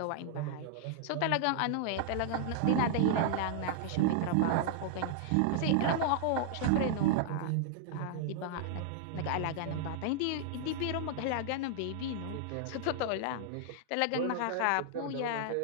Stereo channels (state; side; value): different; both; correlation -0.01